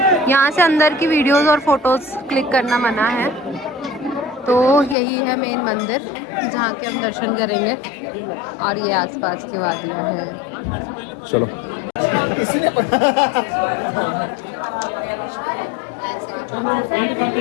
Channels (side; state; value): right; drops out; at 5.0 s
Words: यहाँ से अंदर की वीडियोस और फोटोज क्लिक करना मना है। तो यही है मेन मंदिर जहाँ के हम दर्शन करेंगे और ये आसपास की वादियाँ हैं। चलो